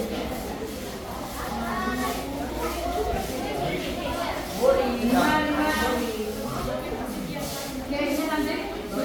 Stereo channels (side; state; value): both; identical; correlation 1.00